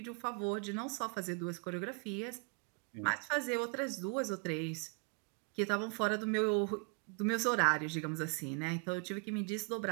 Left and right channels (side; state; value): left; quieter; 35.0 dB